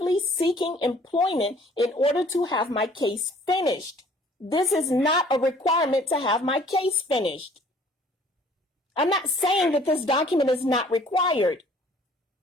seeking employment in order to have my case finished. This is not a requirement to have my case finished. I'm not saying that this document is not required.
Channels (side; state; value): both; normal; correlation 0.55